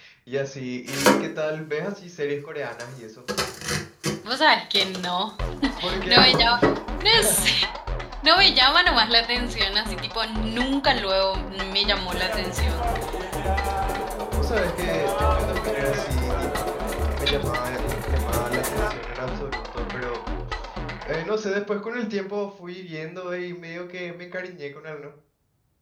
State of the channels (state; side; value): identical; both; correlation 1.00